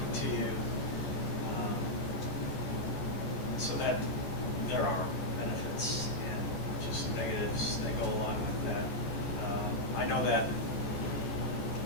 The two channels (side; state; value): right; late; 14 ms